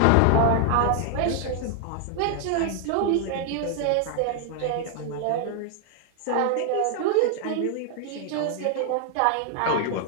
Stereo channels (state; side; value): different; both; correlation 0.00